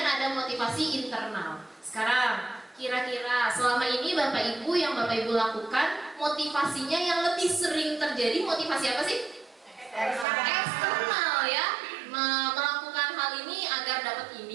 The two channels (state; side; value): drops out; left; at 10.2 s